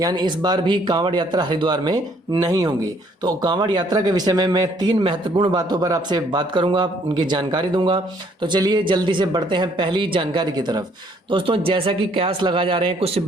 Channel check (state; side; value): normal; both; correlation 0.64